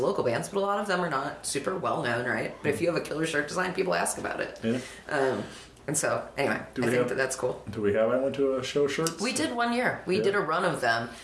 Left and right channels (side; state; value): both; identical; correlation 1.00